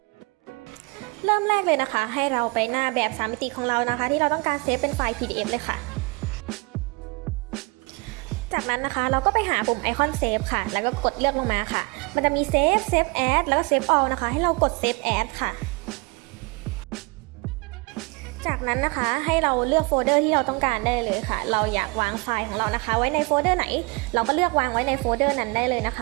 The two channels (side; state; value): left; quieter; 28.7 dB